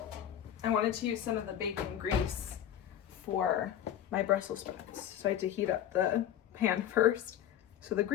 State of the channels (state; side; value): quieter; right; 10.7 dB